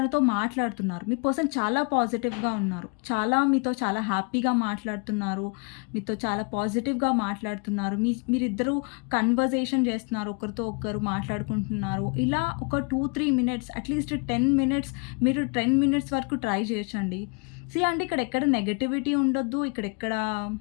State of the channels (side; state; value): right; quieter; 35.2 dB